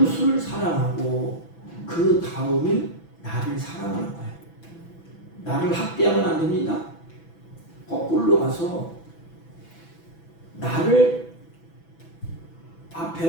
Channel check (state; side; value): late; right; 6.0 ms